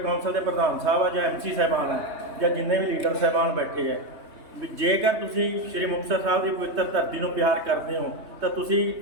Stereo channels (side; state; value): left; late; 3.2 ms